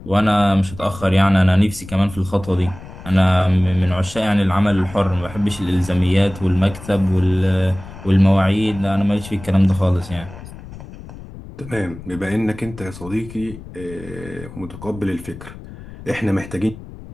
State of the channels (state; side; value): noise; left; rumble, 15 dB below the sound